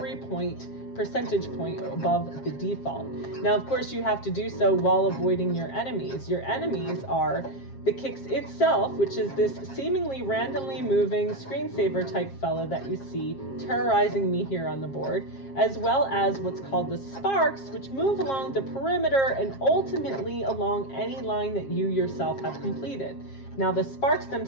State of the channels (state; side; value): late; right; 7.4 ms